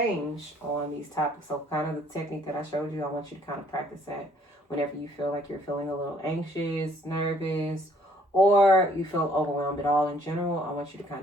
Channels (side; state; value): both; normal; correlation 0.62